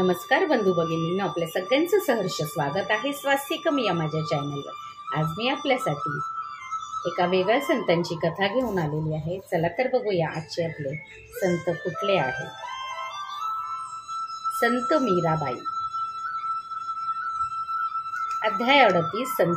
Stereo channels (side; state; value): both; identical; correlation 1.00